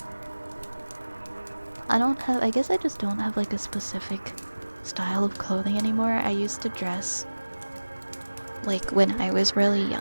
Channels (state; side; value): inverted; both; correlation -1.00